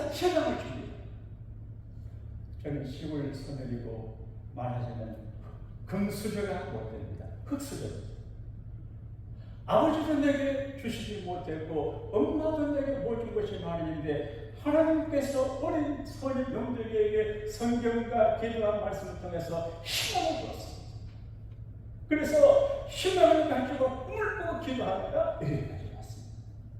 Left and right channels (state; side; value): identical; both; correlation 1.00